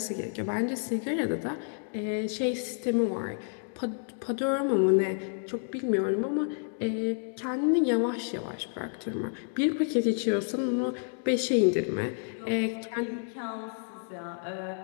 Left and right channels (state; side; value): silent; right; digital silence